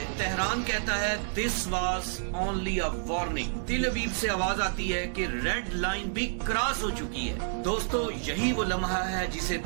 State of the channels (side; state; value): left; silent; digital silence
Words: तेहरान कहता है this was only a warning. तेल अवीव से आवाज आती है कि रेड लाइन भी क्रॉस हो चुकी है। दोस्तों, यही वो लम्हा है जिसे